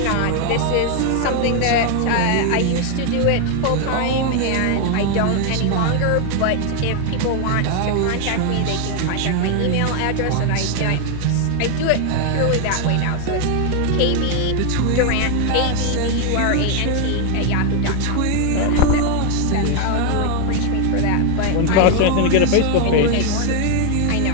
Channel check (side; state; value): both; different; correlation 0.00